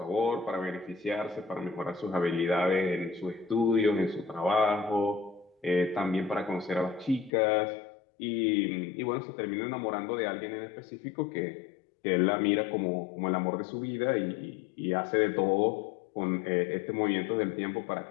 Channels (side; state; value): right; drops out; at 7.3 s